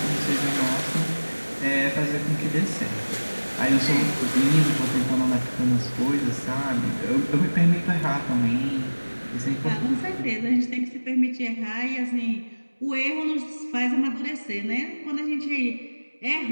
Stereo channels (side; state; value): both; inverted; correlation -1.00